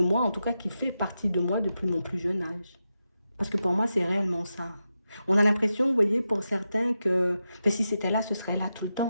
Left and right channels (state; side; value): inverted; both; correlation -0.89